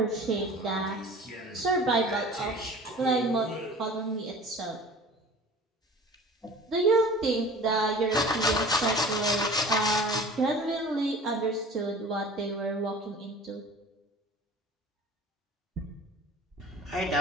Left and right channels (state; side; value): normal; both; correlation 0.42